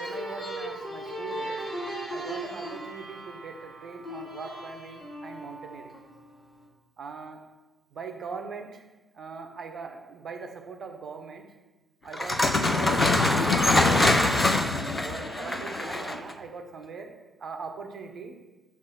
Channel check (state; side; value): normal; both; correlation 0.76